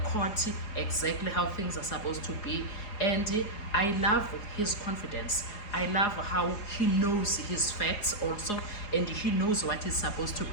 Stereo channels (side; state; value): right; late; 4.8 ms